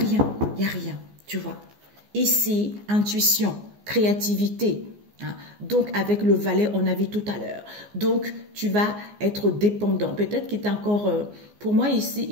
il n'y a rien, tu vois. Ici, intuition, créativité. Hein. Donc, avec le valet, on a vu tout à l'heure. Donc, tu vas être dépendant. Peut-être qu'il est encore... pour moi, ici,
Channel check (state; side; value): late; left; 14 ms